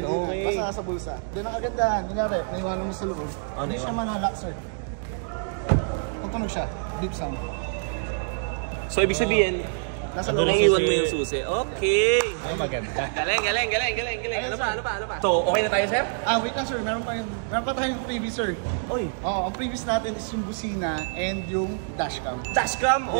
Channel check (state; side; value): silent; left; digital silence